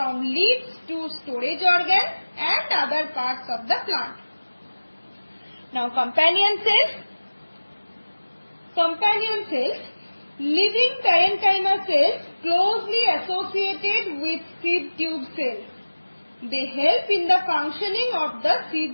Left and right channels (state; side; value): inverted; both; correlation -1.00